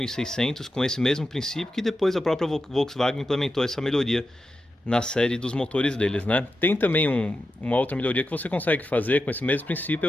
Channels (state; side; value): normal; both; correlation 0.90